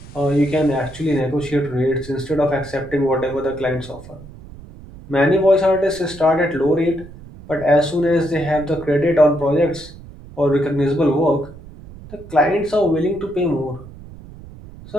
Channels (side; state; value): right; noise; rumble, 17 dB below the sound